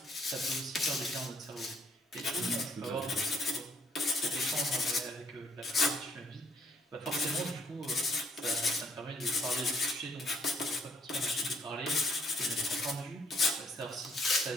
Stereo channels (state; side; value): normal; both; correlation 0.65